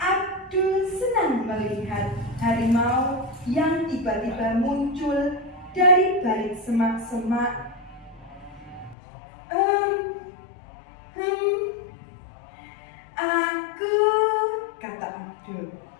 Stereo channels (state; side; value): drops out; right; at 9.0 s